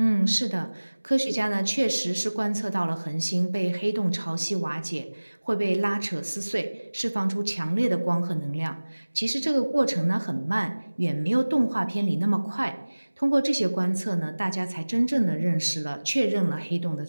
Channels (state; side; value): inverted; both; correlation -1.00